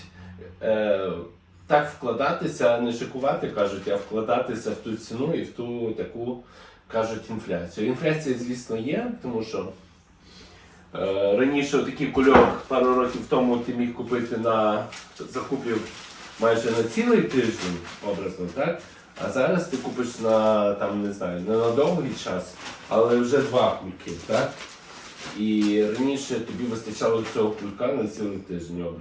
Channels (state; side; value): identical; both; correlation 1.00